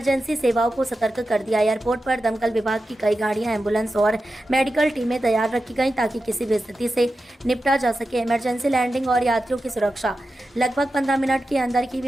सेवाओं को सतर्क कर दिया। एयरपोर्ट पर दमकल विभाग की कई गाड़ियां, एम्बुलेंस और मेडिकल टीमें तैयार रखी गईं ताकि किसी भी स्थिति से निपटा जा सके। इमरजेंसी लैंडिंग और यात्रियों की सुरक्षा। लगभग 15 मिनट के अंदर ही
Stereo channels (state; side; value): normal; both; correlation 0.91